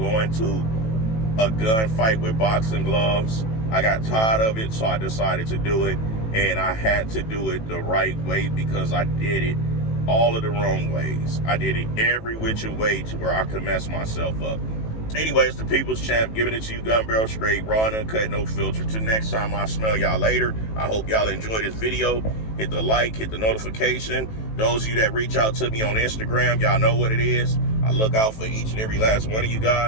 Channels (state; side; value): late; right; 18 ms